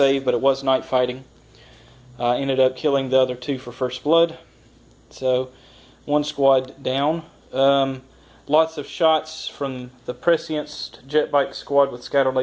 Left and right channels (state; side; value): identical; both; correlation 1.00